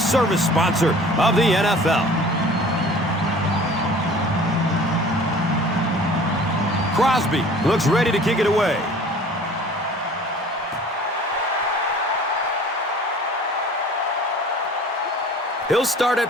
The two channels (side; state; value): both; normal; correlation 0.47